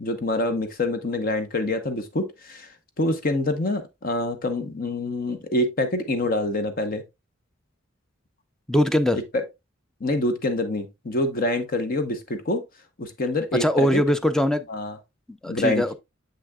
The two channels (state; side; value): normal; both; correlation 0.46